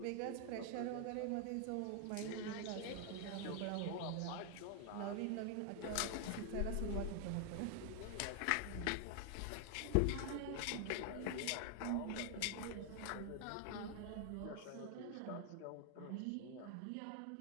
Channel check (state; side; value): different; both; correlation 0.00